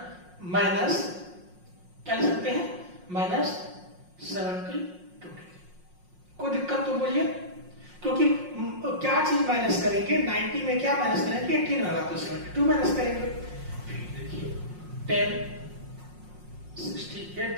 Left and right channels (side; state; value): left; late; 5.5 ms